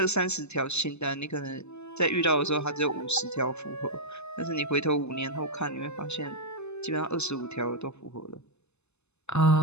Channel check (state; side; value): late; right; 0.81 ms